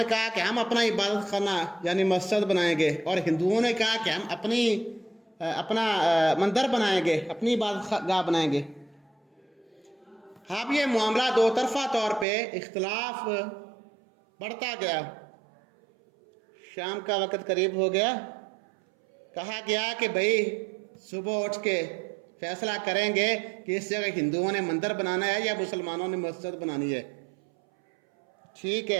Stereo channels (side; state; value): left; drops out; at 12.2 s